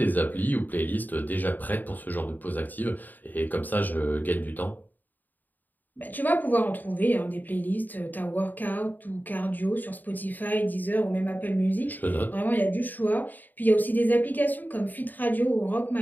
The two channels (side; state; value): right; late; 0.087 ms